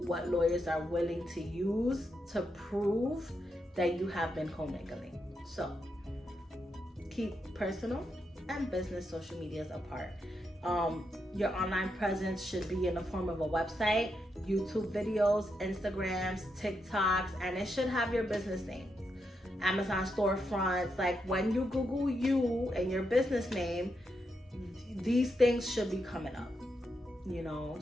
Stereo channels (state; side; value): normal; both; correlation 0.83